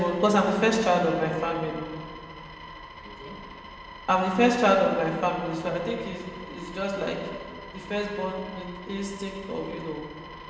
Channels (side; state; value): both; identical; correlation 1.00